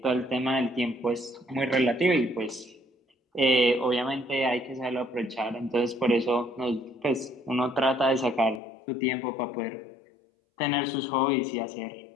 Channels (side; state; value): right; drops out; at 8.6 s